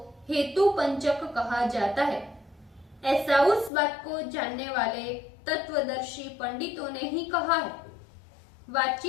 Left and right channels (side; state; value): right; drops out; at 3.7 s